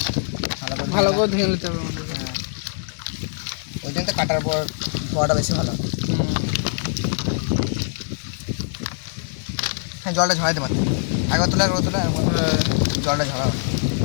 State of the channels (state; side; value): silent; right; digital silence